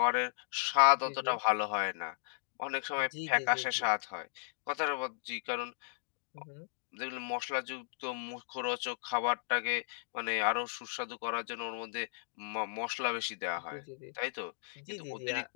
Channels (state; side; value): silent; right; digital silence